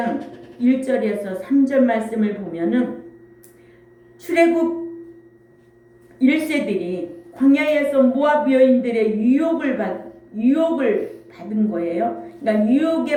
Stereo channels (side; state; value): both; identical; correlation 1.00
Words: 1절에서 3절 말씀을 보면은 출애굽 1세들이 광야에서 모압 여인들의 유혹을 받은 거예요. 그러니까